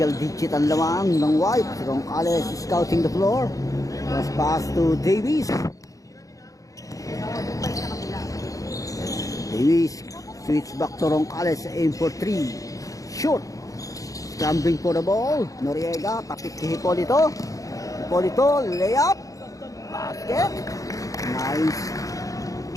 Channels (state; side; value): late; right; 0.16 ms